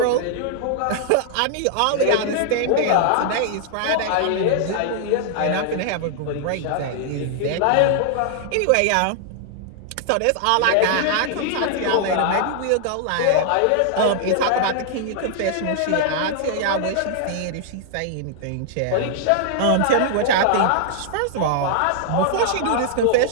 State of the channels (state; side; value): different; both; correlation -0.01